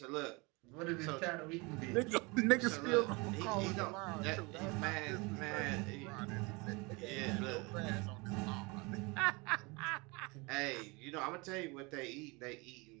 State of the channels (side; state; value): left; quieter; 27.1 dB